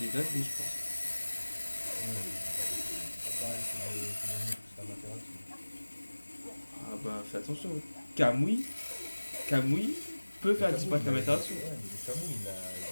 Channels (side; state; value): both; inverted; correlation -1.00